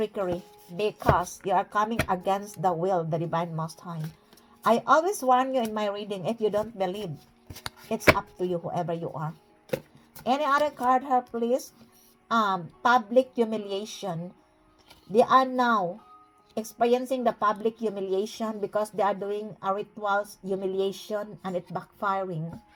because you are coming against the will of the Divine Most High. I always warn you in my reading, if you don't believe, it's up to you, whoever you are. Any other card here, please? Public humiliation. They are now experiencing the public humiliation because they are doing a rituals humiliation and it's backfiring.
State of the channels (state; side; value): identical; both; correlation 1.00